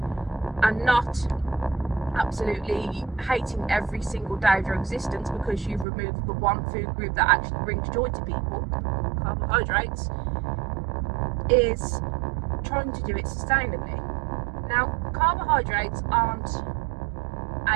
and not absolutely hating every single day of your existence because you've removed the one food group that actually brings joy to people, carbohydrates, is trying to do it sustainably. Now, carbohydrates aren't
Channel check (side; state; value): left; drops out; at 5.9 s